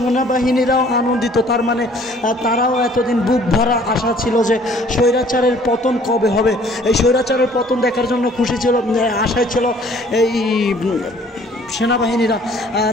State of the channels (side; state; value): both; normal; correlation 0.56